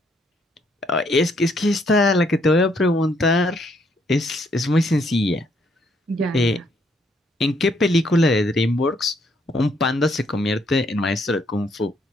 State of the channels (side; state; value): both; normal; correlation 0.70